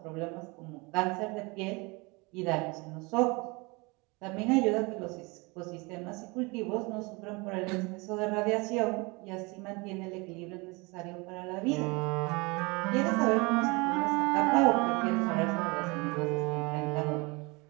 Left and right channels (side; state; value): left; quieter; 26.8 dB